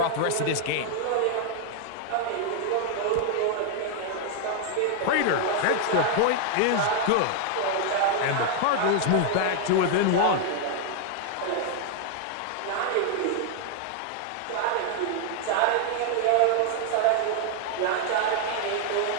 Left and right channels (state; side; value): different; both; correlation 0.00